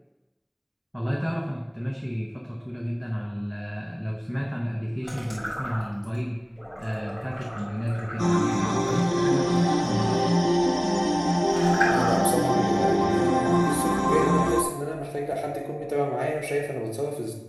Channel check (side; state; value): both; identical; correlation 1.00